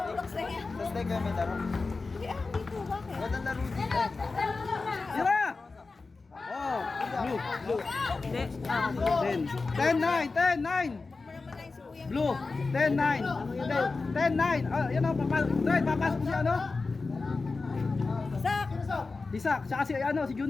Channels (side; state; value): right; quieter; 4.0 dB